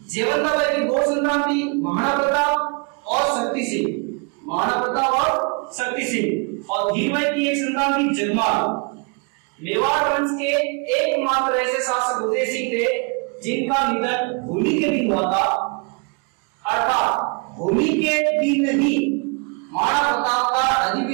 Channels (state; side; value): quieter; left; 34.1 dB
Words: जेवंताबाई की दो संतान थी, महाराणा प्रताप और शक्ति सिंह। महाराणा प्रताप और शक्ति सिंह। और धीरबाई की एक संतान थी जगमाल। मेवाड़ वंश के एकमात्र ऐसे शासक उदय सिंह थे जिनका निधन होली के दिन हुआ था। अर्थात होली के दिन ही महाराणा प्रताप का